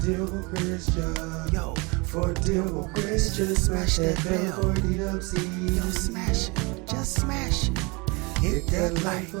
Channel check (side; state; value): left; quieter; 27.9 dB